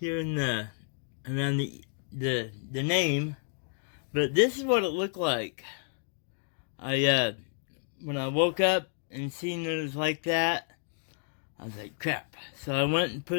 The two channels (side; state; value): right; silent; 57 dB below the other